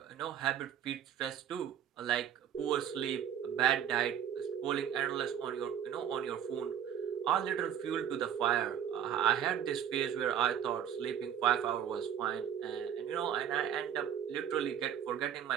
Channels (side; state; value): left; quieter; 9.4 dB